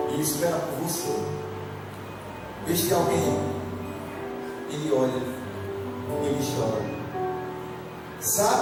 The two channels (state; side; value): identical; both; correlation 1.00